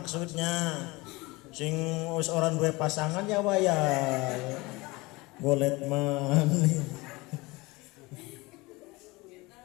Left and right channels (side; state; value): right; quieter; 23.2 dB